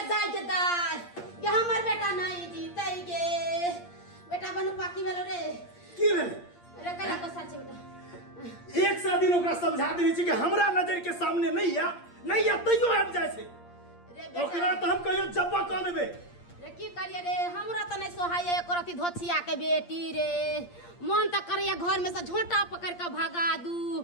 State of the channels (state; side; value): late; right; 8.6 ms